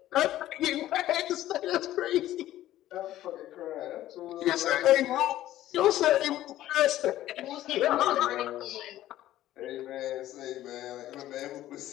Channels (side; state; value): right; quieter; 13.9 dB